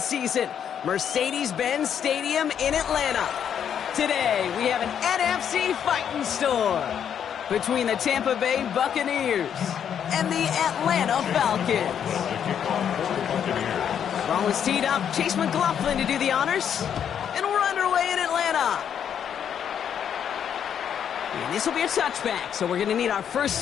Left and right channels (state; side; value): quieter; right; 8.6 dB